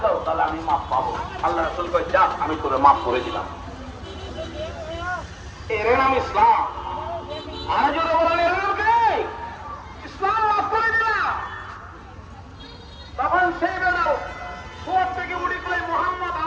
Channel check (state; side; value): identical; both; correlation 1.00